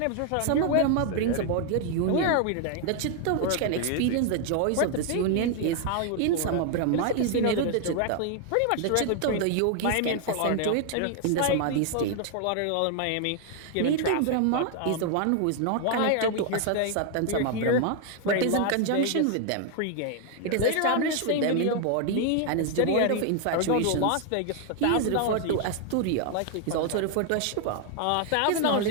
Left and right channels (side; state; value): both; different; correlation 0.00